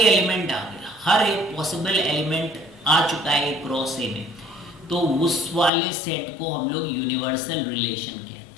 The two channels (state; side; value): drops out; right; at 5.7 s